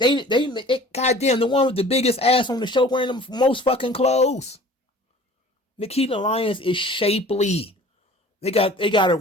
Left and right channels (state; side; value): normal; both; correlation 0.47